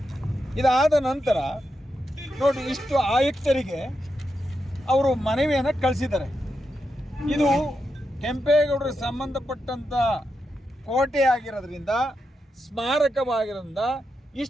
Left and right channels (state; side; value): normal; both; correlation 0.86